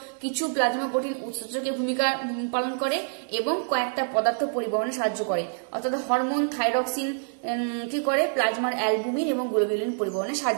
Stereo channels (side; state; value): left; silent; digital silence